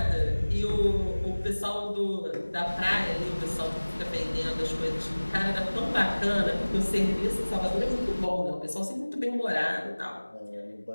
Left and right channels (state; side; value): inverted; both; correlation -1.00